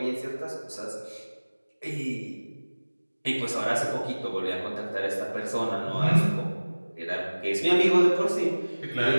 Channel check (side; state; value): both; inverted; correlation -1.00